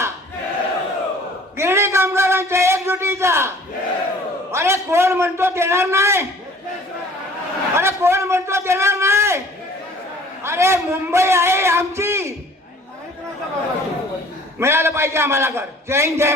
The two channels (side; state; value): both; normal; correlation 0.52